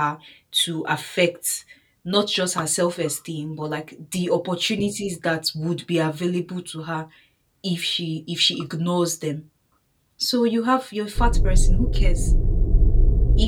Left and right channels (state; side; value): identical; both; correlation 1.00